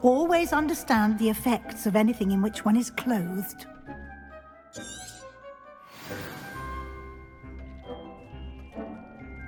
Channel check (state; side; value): identical; both; correlation 1.00